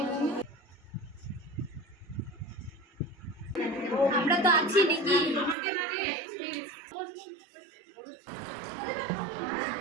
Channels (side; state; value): left; drops out; at 5.6 s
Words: আমরা তো আছি নাকি?